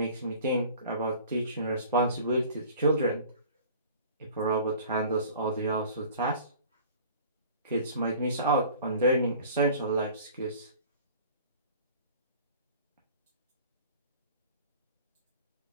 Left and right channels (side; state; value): both; inverted; correlation -0.46